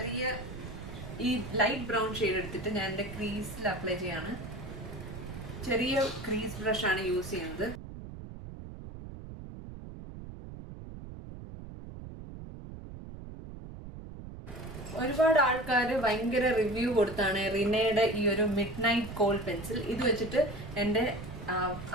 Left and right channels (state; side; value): noise; right; rumble, 12 dB below the sound